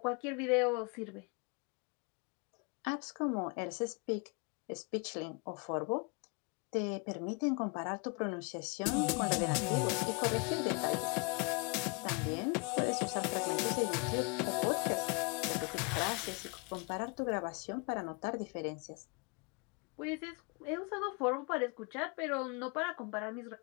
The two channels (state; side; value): quieter; right; 32.2 dB